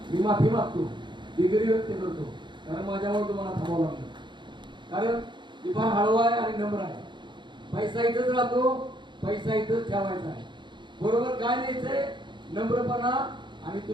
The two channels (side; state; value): left; late; 0.23 ms